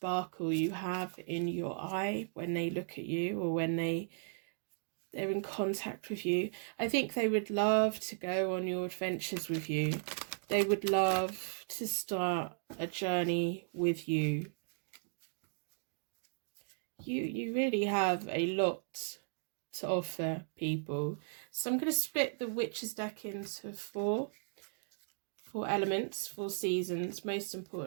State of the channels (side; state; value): left; silent; digital silence